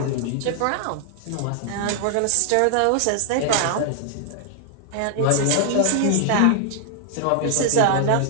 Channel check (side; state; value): both; different; correlation 0.00